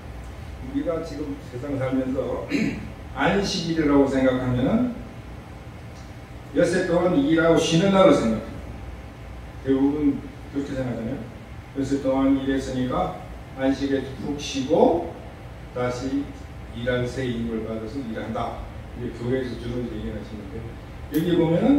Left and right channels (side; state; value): both; identical; correlation 1.00